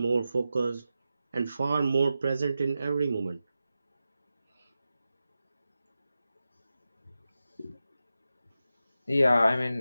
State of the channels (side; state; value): both; inverted; correlation -0.92